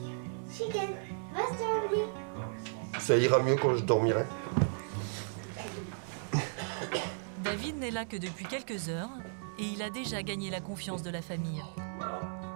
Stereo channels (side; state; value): left; silent; digital silence